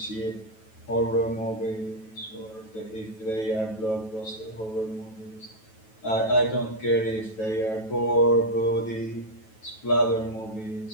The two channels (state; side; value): late; right; 9.2 ms